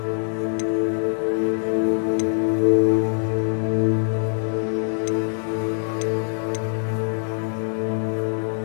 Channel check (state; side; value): silent; right; digital silence